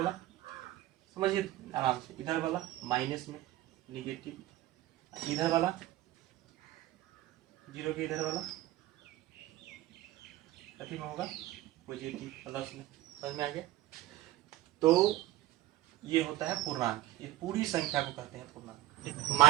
समझिए आराम से, इधर वाला माइनस में निगेटिव, इधर वाला 0 के इधर वाला कथी में होगा, पॉजिटिव, प्लस में। समझ में आ गया। तो ये होता है पूर्णांक, ये पूरी संख्या को कहते हैं पूर्णांक।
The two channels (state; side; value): quieter; left; 15.3 dB